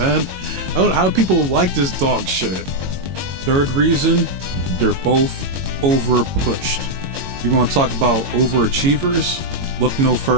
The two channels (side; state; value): left; late; 22 ms